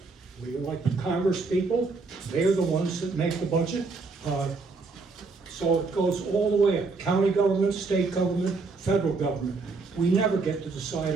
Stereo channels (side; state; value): left; quieter; 4.1 dB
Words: We elect Congress people. They're the ones that make the budget. So it goes all the way up. County government, state government, federal government. We never get to decide